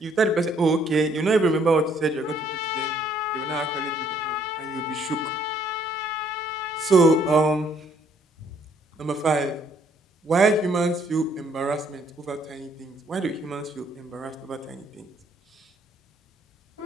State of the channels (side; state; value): both; normal; correlation 0.65